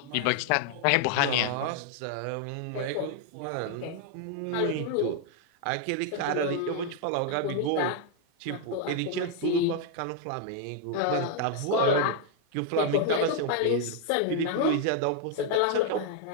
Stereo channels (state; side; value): different; both; correlation 0.00